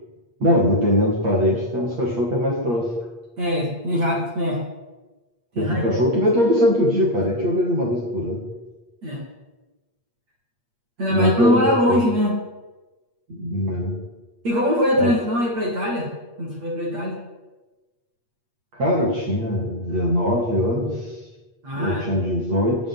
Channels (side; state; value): left; late; 8.5 ms